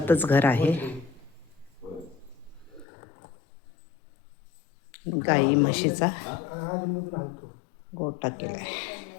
घर आहे. गाई म्हशीचा गोठा केलाय.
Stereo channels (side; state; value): right; drops out; at 2.9 s